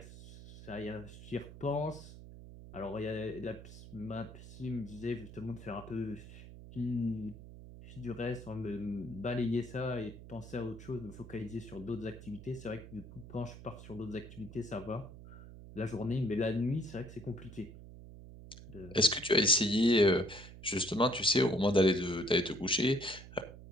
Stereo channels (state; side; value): noise; right; hum, 15 dB below the sound